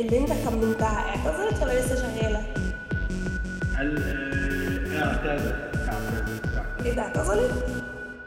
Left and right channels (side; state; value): both; identical; correlation 1.00